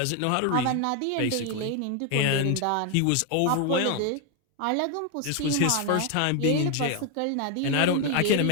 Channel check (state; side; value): different; both; correlation 0.01